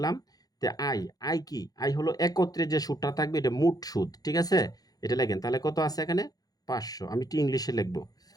তে আই, আই কি? আই হলো একত্রে যে সুদটা থাকবে এটা মোট সুদ, ঠিক আছে? এটা লেখেন, তাহলে কত আছে এখানে? 500। আমি একটু ইংলিশে লিখবো।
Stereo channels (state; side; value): late; right; 0.18 ms